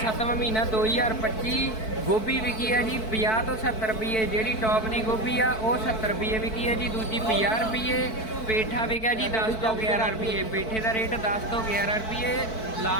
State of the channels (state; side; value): late; right; 4.5 ms